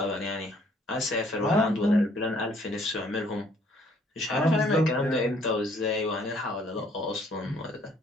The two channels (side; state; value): both; normal; correlation 0.62